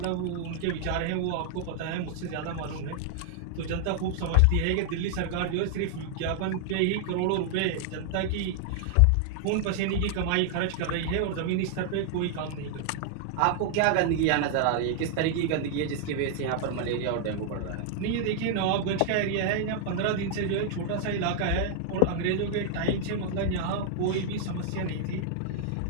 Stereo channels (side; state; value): both; different; correlation 0.00